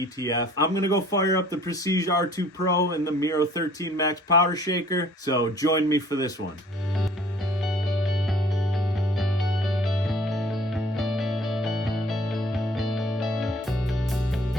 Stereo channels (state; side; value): normal; both; correlation 0.54